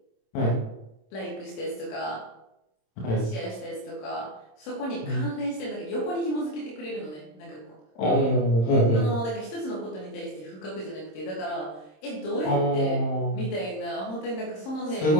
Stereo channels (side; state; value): right; late; 26 ms